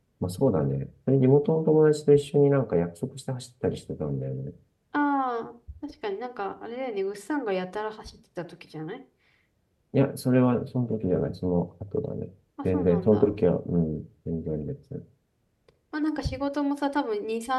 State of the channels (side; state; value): both; identical; correlation 1.00